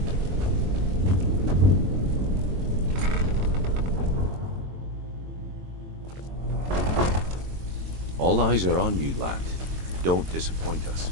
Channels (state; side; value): late; left; 22 ms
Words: All eyes are on you, lad. Don't disappoint us.